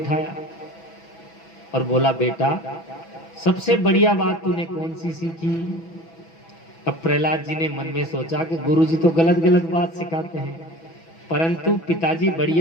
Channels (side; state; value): right; late; 6.1 ms